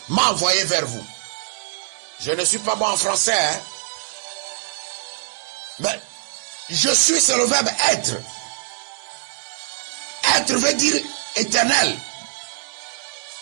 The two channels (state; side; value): silent; left; 60 dB below the other